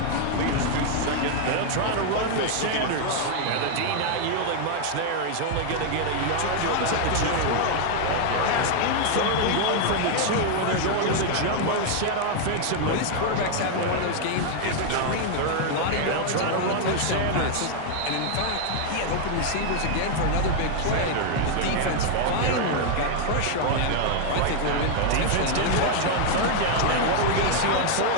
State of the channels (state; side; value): different; both; correlation 0.00